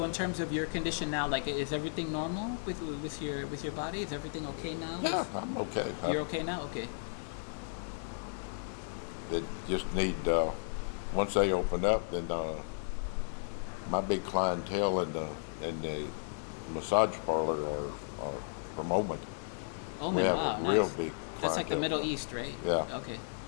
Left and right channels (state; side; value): silent; right; 55 dB below the other